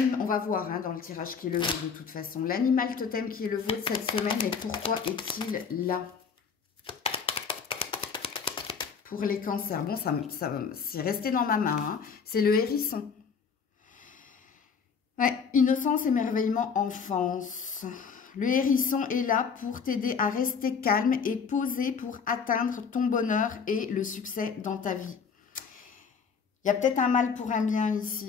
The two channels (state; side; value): quieter; right; 6.0 dB